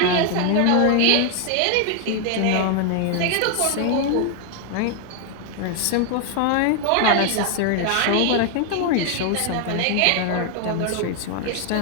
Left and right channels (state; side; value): different; both; correlation 0.00